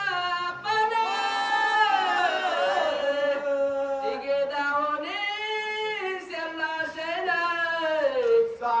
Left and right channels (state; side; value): identical; both; correlation 1.00